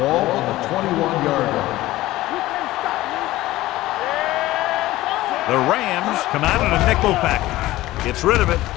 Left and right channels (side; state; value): right; quieter; 16.8 dB